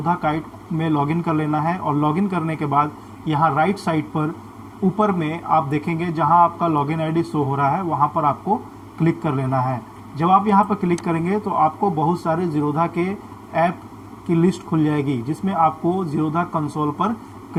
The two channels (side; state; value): both; identical; correlation 1.00